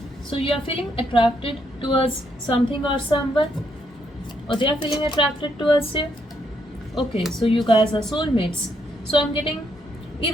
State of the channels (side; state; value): both; normal; correlation 0.74